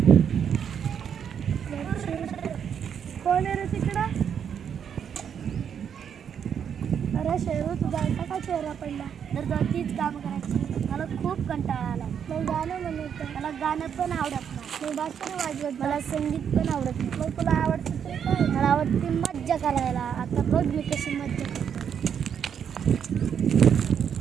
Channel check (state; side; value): quieter; left; 8.0 dB